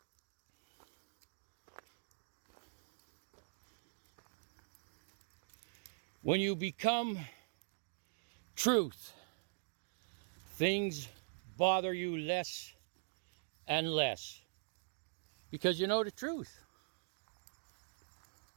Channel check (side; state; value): left; silent; digital silence